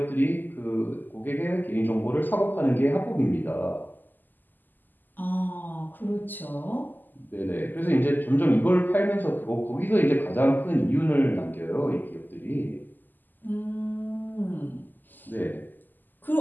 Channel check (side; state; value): right; late; 0.088 ms